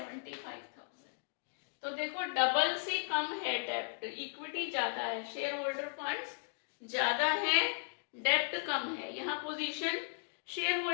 तो देखो डबल से कम है डेब्ट, इक्विटी ज्यादा है, शेयर होल्डर फंड्स ज्यादा है, डेब्ट कम है। यहाँ पोजीशन शेयर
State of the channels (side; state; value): right; silent; digital silence